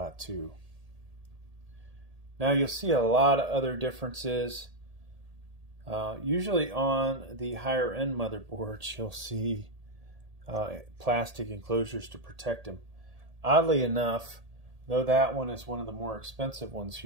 Now you'll see a lot of other differences. Usually on the higher end motherboards, you'll see plastic enclosures to protect them. Oddly enough, though that one is one of the more expensive ones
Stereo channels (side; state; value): left; late; 1.8 ms